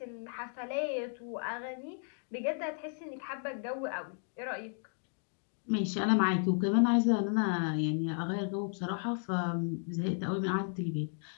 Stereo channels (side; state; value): right; silent; 55 dB below the other